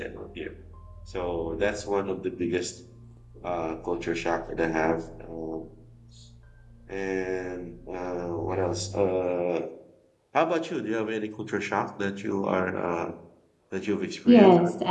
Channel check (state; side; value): identical; both; correlation 1.00